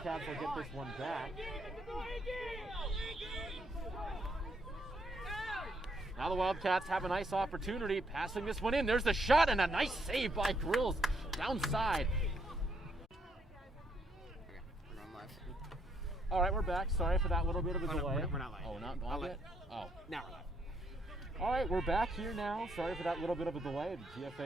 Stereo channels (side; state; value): both; normal; correlation 0.73